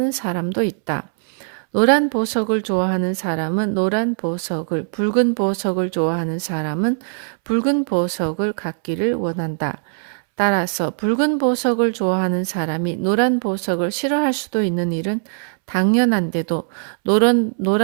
사람도 있다. 노란 보석을 좋아하는 사람은 노란 보석을, 붉은 보석을 좋아하는 사람은 붉은 보석을 갖기를 원한다. 따라서 붉은 보석을 좋아하는 사람이 노란 보석을 싫어할 수도 있는 일은 당연한데도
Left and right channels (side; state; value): left; silent; 65 dB below the other